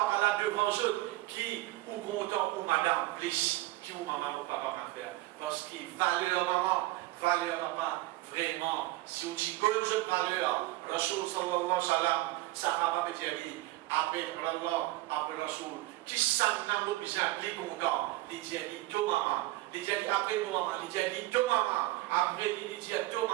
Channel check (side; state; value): left; quieter; 18.6 dB